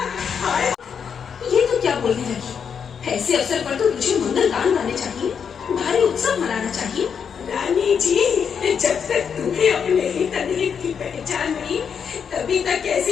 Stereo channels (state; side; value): quieter; right; 7.0 dB